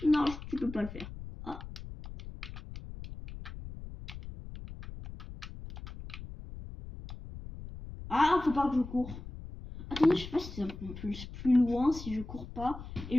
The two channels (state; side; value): noise; left; rumble, 12 dB below the sound